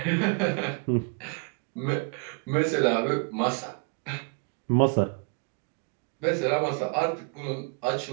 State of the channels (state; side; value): quieter; left; 36.9 dB